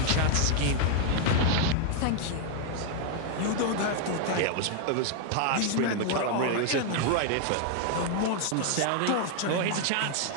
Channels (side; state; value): both; different; correlation 0.00